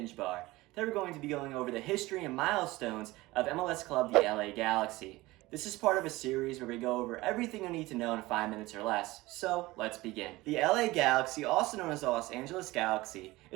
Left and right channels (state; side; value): quieter; left; 19.7 dB